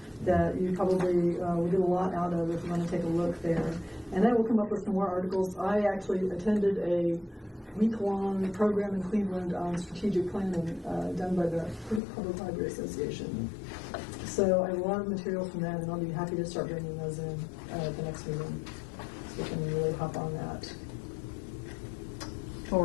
that you probably will get a lot out of if you want to take a look there. And I will come up with some more articles. I actually attended a week-long program in Cleveland on strategic planning done by the Public Library Association. So I have a lot of material from that, and I'll be happy to start bringing those in at the next meeting, so we can really hop on that.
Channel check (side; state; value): right; drops out; at 12.0 s